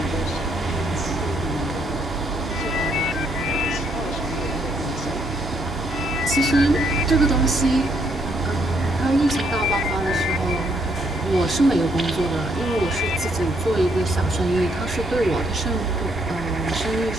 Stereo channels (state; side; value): normal; both; correlation 0.71